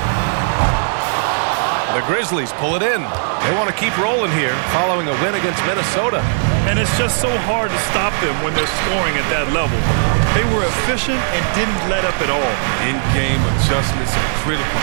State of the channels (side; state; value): left; silent; digital silence